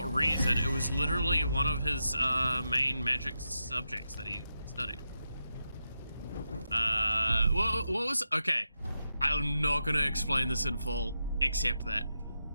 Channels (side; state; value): both; inverted; correlation -0.87